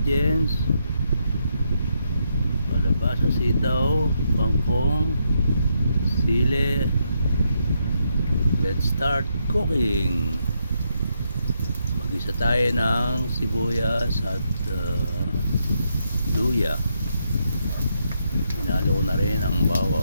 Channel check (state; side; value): inverted; both; correlation -0.79